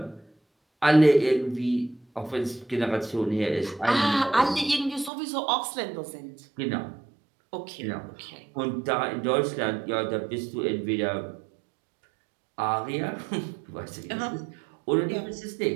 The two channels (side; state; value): left; drops out; at 5.1 s